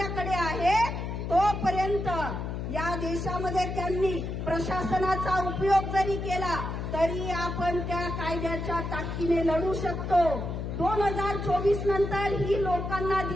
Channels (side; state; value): left; noise; hum, 4 dB below the sound